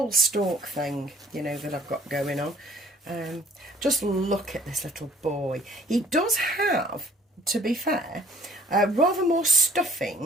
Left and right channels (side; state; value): both; normal; correlation 0.57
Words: stork thing, you know, that I've got going on. Just look at this little boy. He does have, to be fair, rather more